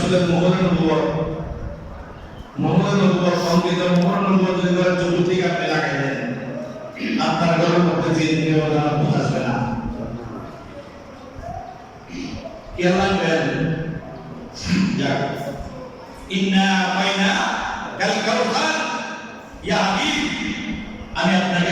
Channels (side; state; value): both; identical; correlation 1.00